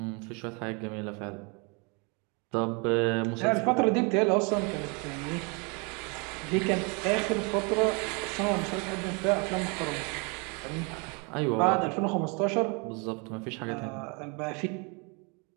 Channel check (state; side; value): quieter; left; 32.3 dB